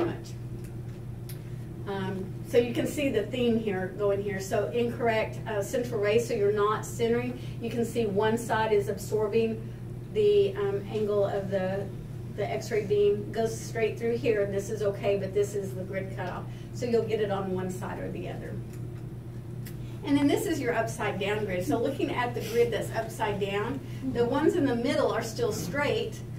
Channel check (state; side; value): identical; both; correlation 1.00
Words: So you can see the theme here going here. So incorrect central ray, so you're not centering. You can see one side is absorbing the angle of the X-ray beam, goes straight through here, and this is okay, but this is the grid cutoff. So you'll get it on one side or the other. And then this is your upside down grid. So looking at the grid that's upside down, the ones in the middle are still straight.